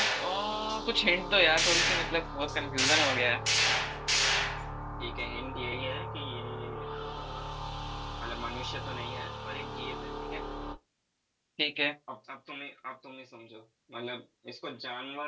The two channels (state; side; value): identical; both; correlation 1.00